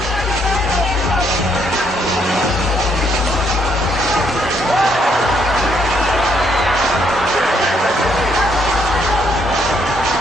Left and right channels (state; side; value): normal; both; correlation 0.71